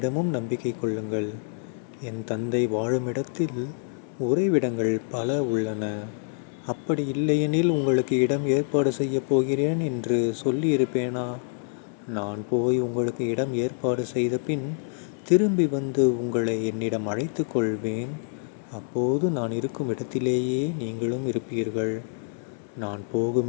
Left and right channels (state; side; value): silent; right; 61 dB below the other